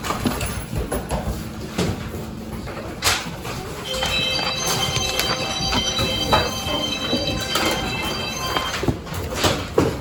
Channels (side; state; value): both; identical; correlation 1.00